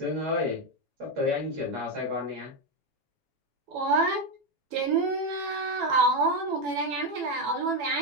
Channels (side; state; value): left; late; 7.1 ms